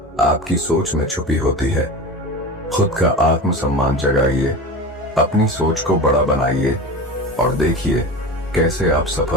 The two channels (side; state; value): both; normal; correlation 0.29